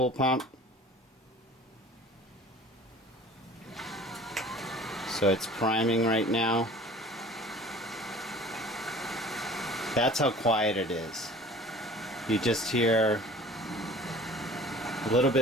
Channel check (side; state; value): both; normal; correlation 0.45